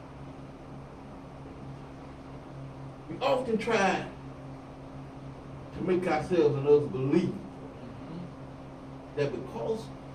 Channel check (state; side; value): identical; both; correlation 1.00